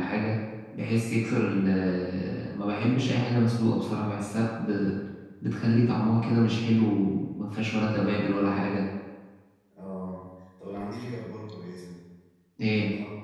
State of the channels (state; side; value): identical; both; correlation 1.00